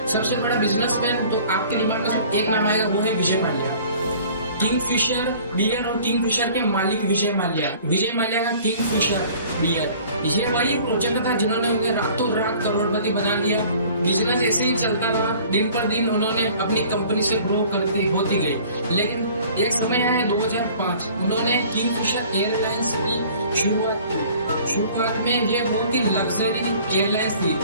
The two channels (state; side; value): inverted; both; correlation -0.50